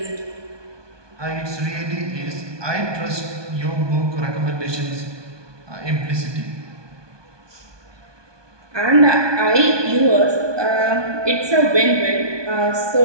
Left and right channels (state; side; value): late; left; 1.2 ms